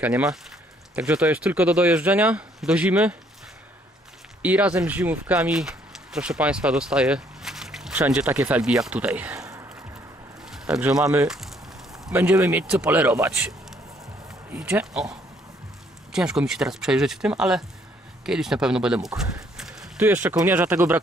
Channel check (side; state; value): both; normal; correlation 0.66